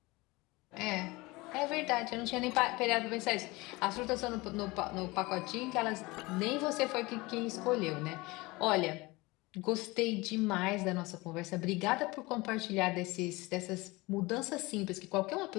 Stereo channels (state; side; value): quieter; right; 22.6 dB